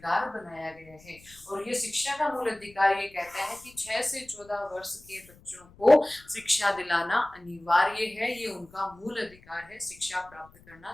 बनाया गया है। और ये शिक्षा का मूल अधिकार ये कहता है कि 6 से 14 वर्ष के बच्चों को शिक्षा दिलाना अनिवार्य है। ये उनका मूल अधिकार है, शिक्षा प्राप्त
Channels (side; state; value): left; noise; rumble, 25 dB below the sound